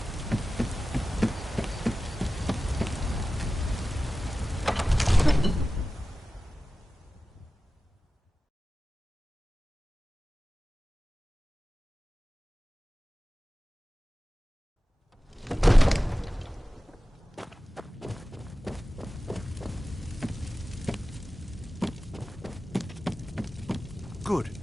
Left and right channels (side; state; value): both; normal; correlation 0.95